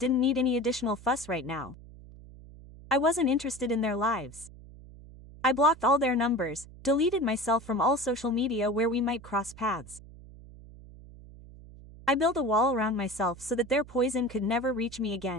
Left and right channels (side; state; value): right; noise; hum, 19 dB below the sound